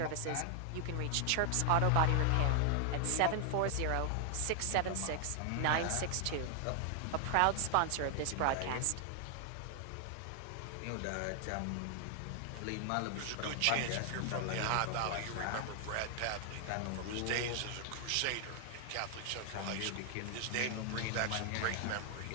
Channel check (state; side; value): different; both; correlation 0.00